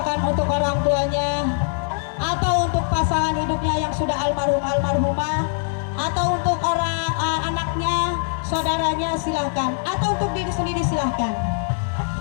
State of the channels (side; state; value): right; silent; digital silence